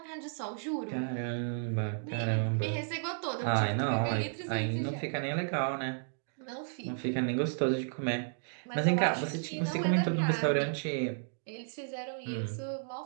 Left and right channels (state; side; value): silent; left; digital silence